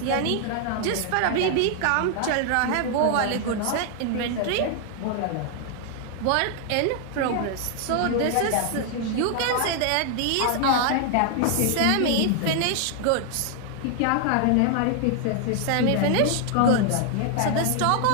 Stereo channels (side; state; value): both; different; correlation 0.00